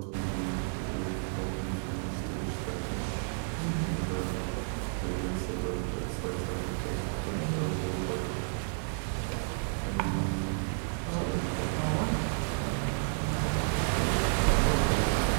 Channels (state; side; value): silent; left; 57 dB below the other